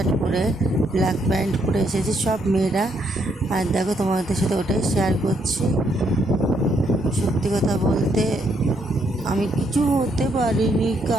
পরে ব্ল্যাক প্যান্ট পরে এসেছি, সব মেয়েরা। আর দেখো, তোমাদের সাথে ওটাই শেয়ার করছি। সত্যি কথা বলতে আমি কিছু হতে পারিনি,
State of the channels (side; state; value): both; normal; correlation 0.73